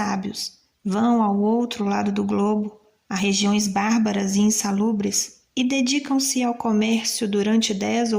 vão ao outro lado do globo, a regiões bárbaras e insalubres, e dedicam-se ao comércio durante 10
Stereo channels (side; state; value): both; identical; correlation 1.00